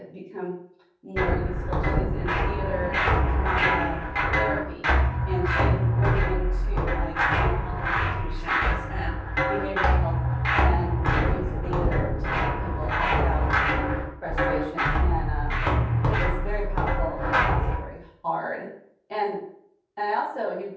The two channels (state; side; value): identical; both; correlation 1.00